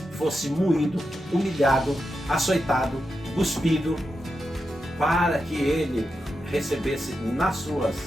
fosse moído, humilhado, açoitado, cuspido, para que ele recebesse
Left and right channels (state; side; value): normal; both; correlation 0.88